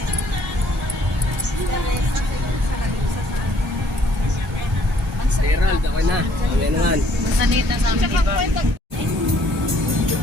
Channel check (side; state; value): both; normal; correlation 0.63